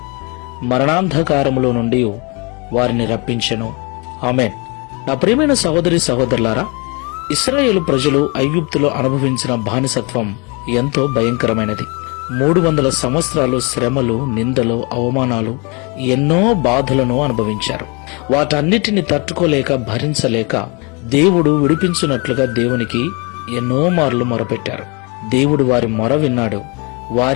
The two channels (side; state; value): right; quieter; 30.3 dB